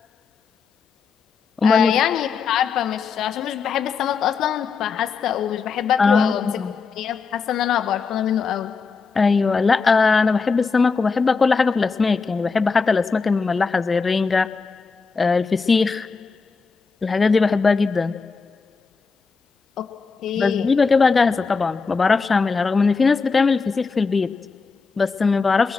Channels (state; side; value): quieter; right; 4.9 dB